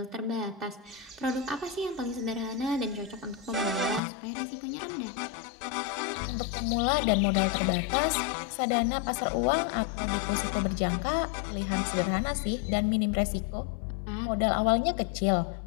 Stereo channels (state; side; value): drops out; right; at 4.0 s